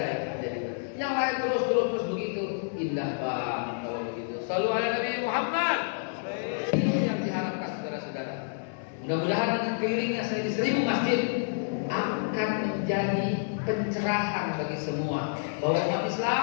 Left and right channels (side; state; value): right; silent; digital silence